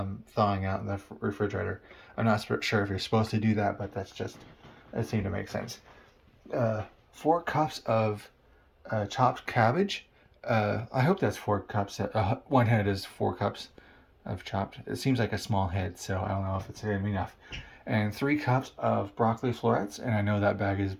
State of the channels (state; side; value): identical; both; correlation 1.00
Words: out in the refrigerator. I'm not sure if you're supposed to do that, but it seemed to make sense. 4 cups of chopped cabbage. I hope that's 4 cups. 1 head is 4 cups of chopped. It seems like a small head, so I don't know if it's going to be enough. And 3 cups of broccoli florets, and I know that bag is